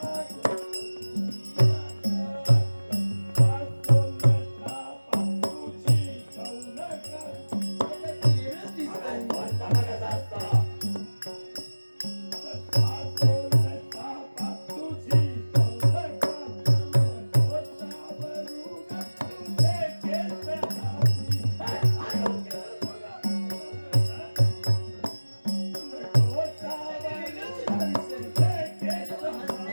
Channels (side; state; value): both; inverted; correlation -1.00